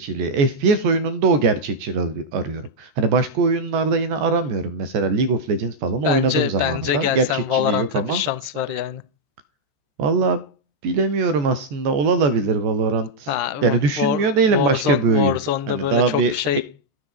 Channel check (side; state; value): left; late; 14 ms